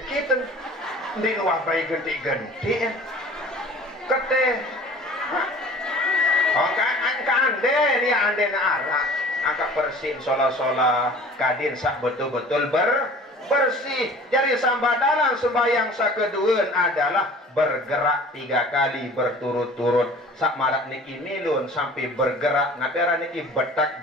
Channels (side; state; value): both; normal; correlation 0.45